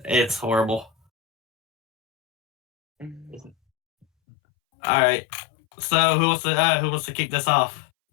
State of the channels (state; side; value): drops out; right; at 4.0 s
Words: it's horrible. All right, so who wants to kick this off?